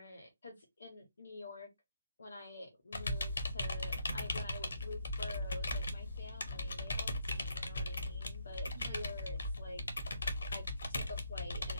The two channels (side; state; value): both; inverted; correlation -0.74